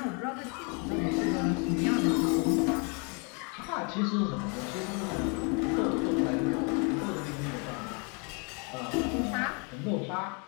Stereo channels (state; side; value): quieter; right; 34.8 dB